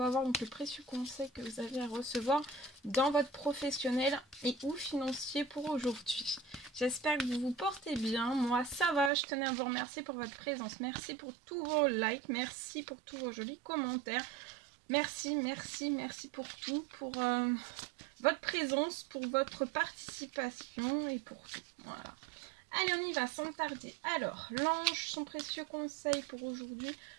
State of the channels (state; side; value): drops out; left; at 9.1 s